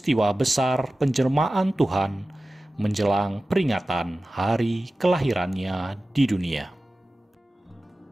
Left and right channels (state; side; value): normal; both; correlation 0.96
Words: besar penjelmaan Tuhan menjelang peringatan hari kelahirannya di dunia.